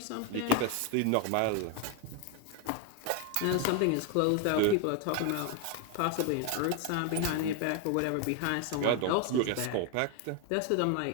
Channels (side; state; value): both; different; correlation 0.01